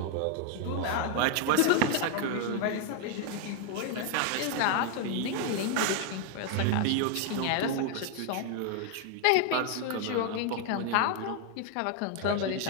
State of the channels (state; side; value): different; both; correlation 0.00